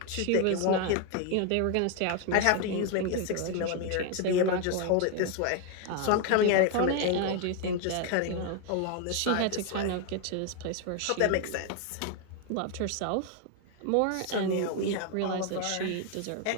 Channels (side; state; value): both; different; correlation 0.01